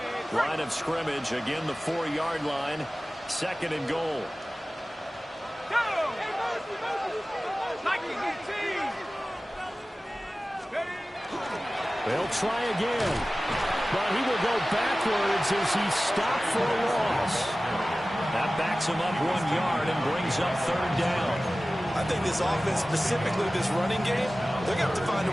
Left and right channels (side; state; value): both; normal; correlation 0.96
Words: Line of scrimmage, again the 4-yard line. Second and goal. They'll try again. But he will go backwards as he stopped for a loss. That backs him up 1 yard and brings up third down. I think this offense, specifically this running game, they're going to have to find